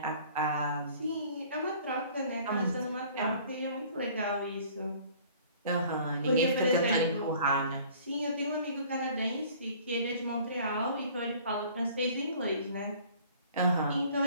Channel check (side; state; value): both; inverted; correlation -0.51